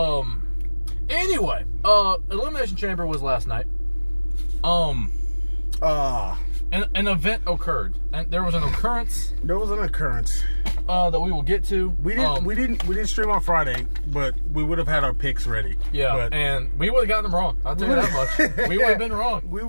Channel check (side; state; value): both; inverted; correlation -1.00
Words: Anyway, Elimination Chamber was last night. An event occurred, and there was an occurrence. There was an occurrence that we will get to. We didn't stream on Friday, but we would have had our picks ready. Yeah, and we would have gotten them wrong. I'll tell you that much. We would have been wrong. We